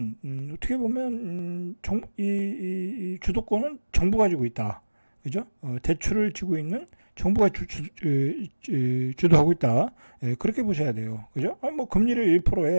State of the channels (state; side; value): inverted; both; correlation -1.00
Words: 어떻게 보면 이 주도권은 정부가 지고 있다. 그죠? 대출을 지고 있는 정부가 주도하고 있다. 그렇게 보셔야 돼요. 그죠? 아니, 뭐 금리를